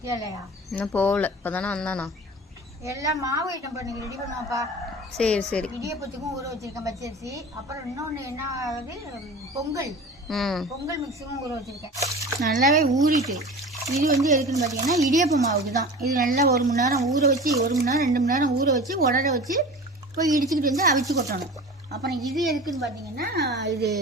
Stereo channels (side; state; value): both; normal; correlation 0.36